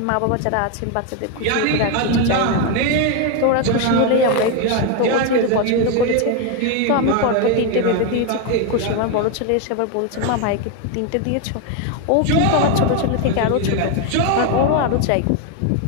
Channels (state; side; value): different; both; correlation 0.01